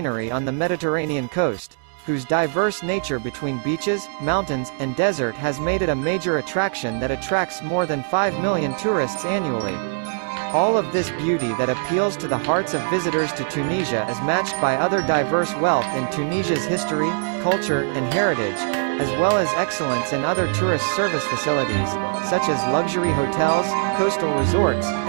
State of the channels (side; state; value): left; silent; 64 dB below the other